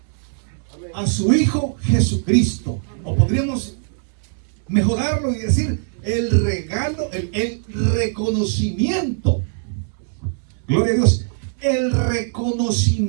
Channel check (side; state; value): left; silent; 65 dB below the other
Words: a su Hijo Jesucristo. O podríamos mejorarlo y decir el regalo, el reconocimiento. Gloria a Dios. El